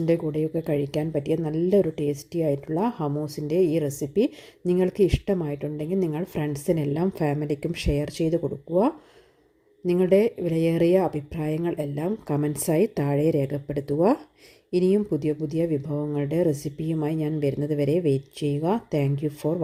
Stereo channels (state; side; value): identical; both; correlation 1.00